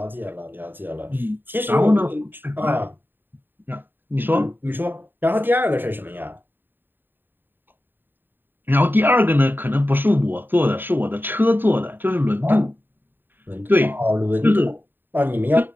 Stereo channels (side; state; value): left; late; 0.094 ms